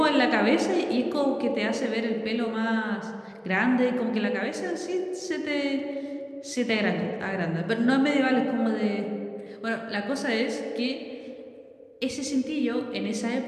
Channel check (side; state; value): both; identical; correlation 1.00